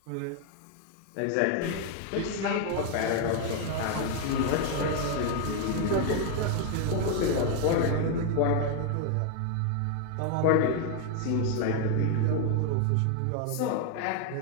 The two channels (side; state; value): both; different; correlation 0.00